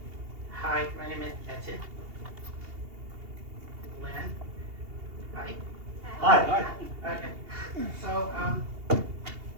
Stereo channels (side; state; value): left; late; 2.8 ms